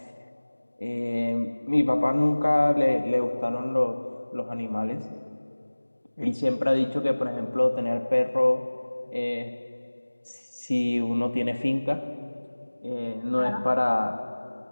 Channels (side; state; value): both; inverted; correlation -1.00